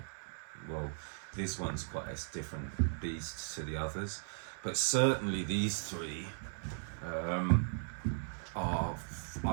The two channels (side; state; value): left; silent; 53 dB below the other